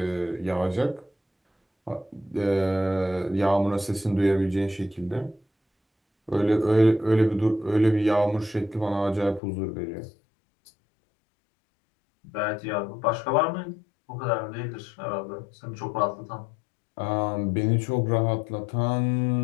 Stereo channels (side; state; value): right; drops out; at 9.4 s